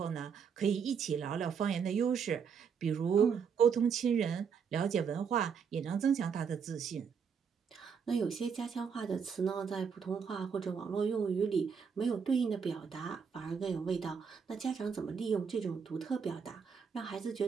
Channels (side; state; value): left; quieter; 6.5 dB